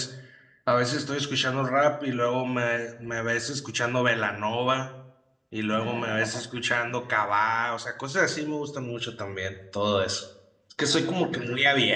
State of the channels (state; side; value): identical; both; correlation 1.00